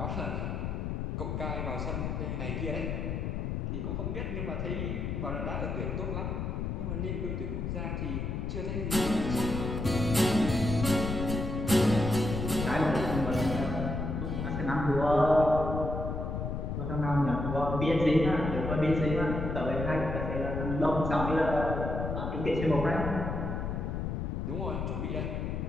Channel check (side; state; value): left; noise; rumble, 2 dB below the sound